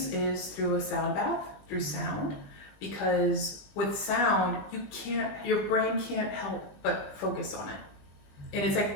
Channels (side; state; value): right; late; 20 ms